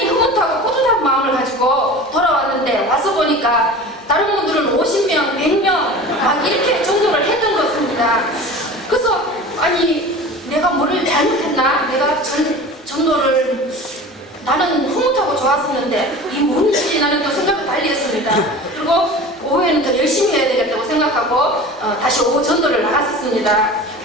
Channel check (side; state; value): both; normal; correlation 0.37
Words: 흐뭇하고 뿌듯한 마음을 가지고 돌아왔는데 와서 보니까 다른 분들은 50명, 100명 막 이렇게 전도를 했던 것 같습니다. 그래서 아니 내가 뭐를 잘못했나? 내가 전도를 나는 흐뭇하고 좋았었는데 이 뭔지 나는 또 생각을 달리 했습니다. 그리고 오후에는 더 열심히 해야 되겠다고 생각하고 다시 오후 전도를 나갔었습니다.